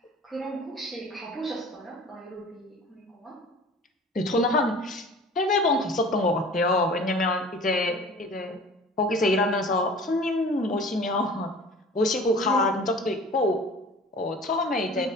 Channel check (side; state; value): both; normal; correlation 0.43